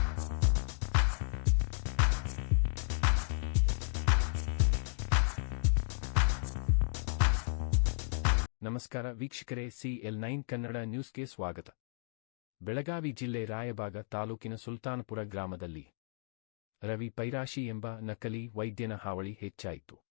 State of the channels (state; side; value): silent; right; digital silence